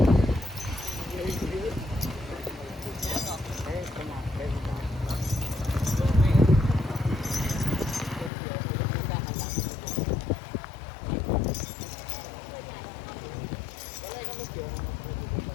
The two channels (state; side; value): drops out; right; at 8.3 s